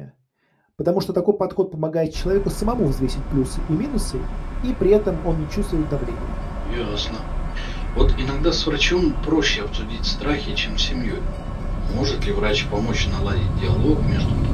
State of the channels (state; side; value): identical; both; correlation 1.00